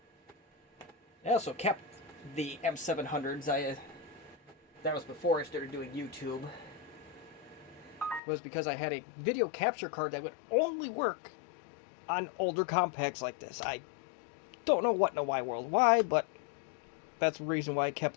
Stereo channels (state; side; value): drops out; right; at 8.2 s